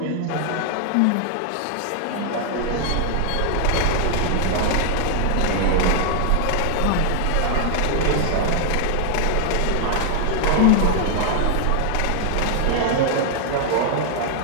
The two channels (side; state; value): both; different; correlation 0.00